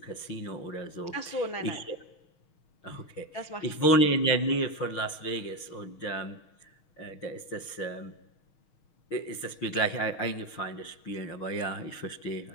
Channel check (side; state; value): right; late; 6.4 ms